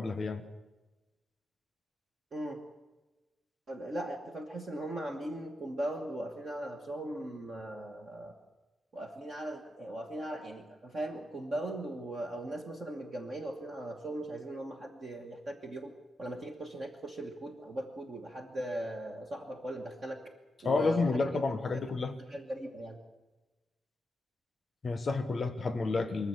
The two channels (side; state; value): both; normal; correlation 0.86